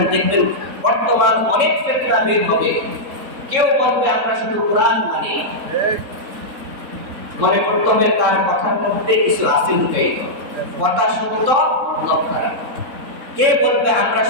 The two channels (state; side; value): late; left; 3.7 ms